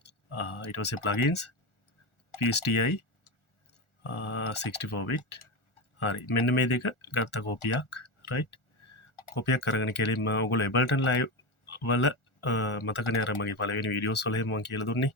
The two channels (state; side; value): late; right; 1.4 ms